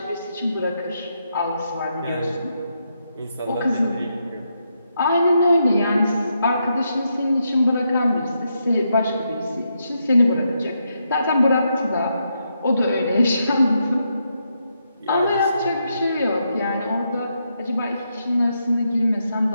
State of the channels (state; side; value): inverted; both; correlation -0.81